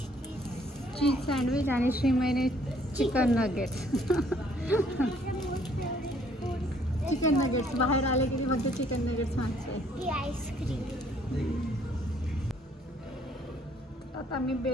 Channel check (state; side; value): normal; both; correlation 0.63